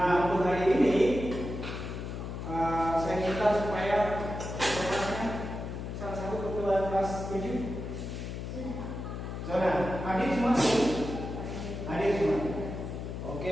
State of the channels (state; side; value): noise; left; hum, 6 dB below the sound